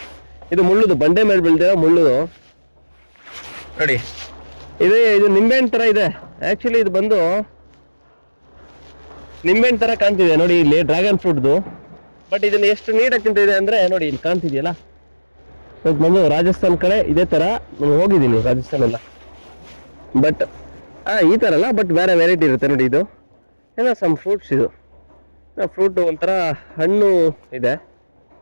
ಇದು ಮುಳ್ಳುದು, ಬಂಡೆ ಮೇಲೆ ಬೆಳೆದಿರೋ ಮುಳ್ಳು ನೋಡಿ. ಇದು ನಿಂಬೆಹಣ್ಣು ತರ ಇದೆ. ಆಕ್ಚುಲಿ ಇದು ಬಂದು ನಿಂಬೆಹಣ್ಣು ತರ ಕಾಣ್ತಿದೆ ನೋಡಿ, ಇಲ್ಲಿ ಡ್ರ್ಯಾಗನ್ ಫ್ರೂಟ್ದು. ಬಟ್ ಇದನ್ನ ಎಷ್ಟು ನೀಟಾಗಿ ತಿಂತಿದೆ ಅಂದ್ರೆ ನೋಡಿ, ಇಲ್ಲಿ ಕಾಣ್ತಿದ್ಯಲ್ಲ. ಇದು ಬಂದು ರಾಜಸ್ಥಾನ್ ಕಡೆ ಇದೇ ತರ ನಾನು ಹೋಗಿದ್ದೀನಿ, ರಾಜಸ್ಥಾನ್ ಎಲ್ಲ. ಬಟ್ ಈ ತರ ಅಲ್ಲ, ಬಟ್ ಬೇರೆ ವೆರೈಟಿ ಇರುತ್ತೆ ನೋಡಿ. ಇದು ಏನೋ ಸಮ್ ಫ್ರೂಟ್ಸ್. ಇದು ಫ್ರೂಟ್ ಒಂಥರ ಹಣ್ಣು ಇದೆ.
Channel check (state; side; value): inverted; both; correlation -1.00